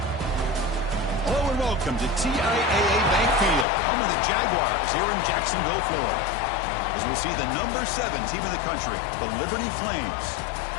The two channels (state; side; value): drops out; right; at 3.7 s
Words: Hello and welcome to TIAA Bank Field, home of the Jaguars here in Jacksonville, Florida. As we'll see the number 7 team in the country, the Liberty Flames,